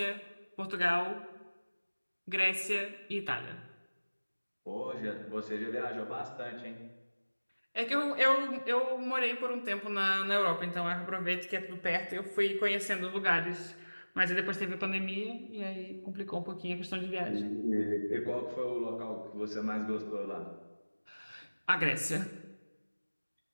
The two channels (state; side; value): inverted; both; correlation -1.00